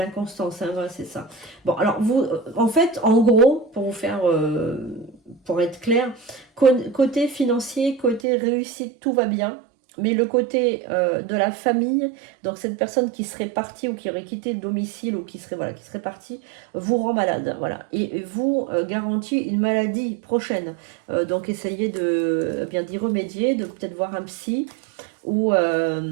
hein, voilà, c'est ça. Bon, alors vous, en fait, en gros, pour vous faire, pour être clair, côté financier, côté réussite, tout va bien. Mais le côté de la famille, donc cette personne qui serait partie ou qui aurait quitté le domicile ou qui serait, voilà, qui serait partie, vous rend malade. Voilà. Et vous garantit une maladie prochaine. Donc essayez de bien d'y remédier, de peut-être voir un psy ou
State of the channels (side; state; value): left; drops out; at 8.2 s